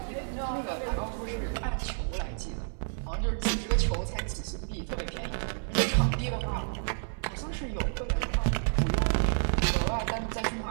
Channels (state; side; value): silent; left; digital silence